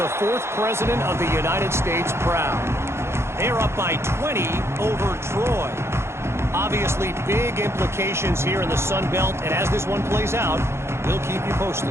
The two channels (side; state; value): left; late; 0.13 ms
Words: 4th president of the United States proud. They're up by 20 over Troy. Obviously, big implications here in the Sun Belt, and as this one plays out, we'll keep you